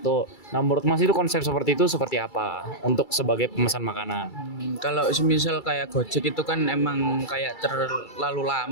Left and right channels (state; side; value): late; right; 2.3 ms